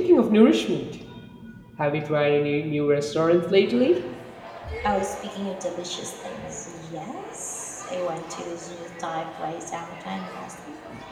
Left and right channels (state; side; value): identical; both; correlation 1.00